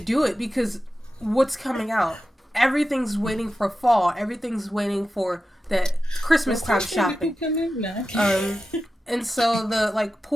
it, because what's coming out? Everything's waiting for fall. Everything's waiting for that Christmas time shopping. And so the like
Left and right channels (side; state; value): both; normal; correlation 0.92